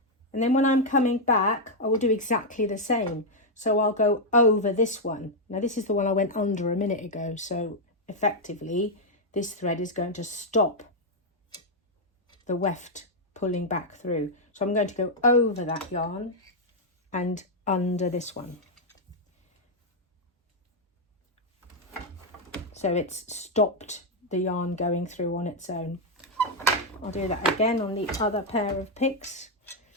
And then when I'm coming back, I will do exactly the same. So I'll go over this one. Now this is the one I went under a minute ago. So effectively, this thread is going to stop the weft pulling back through. So I'm going to go over that yarn and under this one. So it's stopped the yarn going through on its own. I'll do that again on the other pair of picks.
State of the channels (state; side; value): normal; both; correlation -0.01